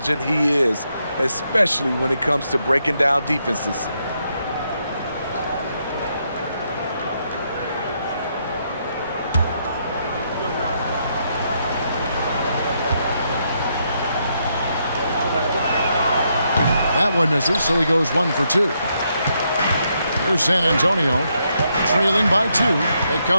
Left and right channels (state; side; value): inverted; both; correlation -0.78